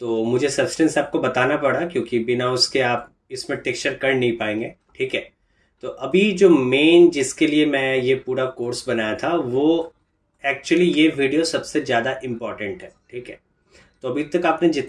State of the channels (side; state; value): both; identical; correlation 1.00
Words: तो मुझे सब्सटेंस आपको बताना पड़ा क्योंकि बिना उसके आप इसमें टेक्सचर कर नहीं पाएंगे। ठीक है, तो अभी जो मेन जिसके लिए मैं ये पूरा कोर्स बनाया था वो एक्चुअली ये वीडियो सबसे ज़्यादा इम्पॉर्टेंट है। ठीक है, तो अभी तक आपने